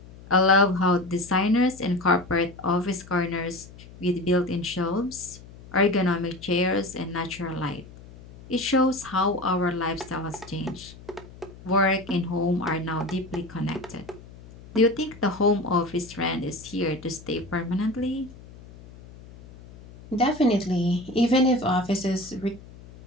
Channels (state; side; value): noise; left; hum, 19 dB below the sound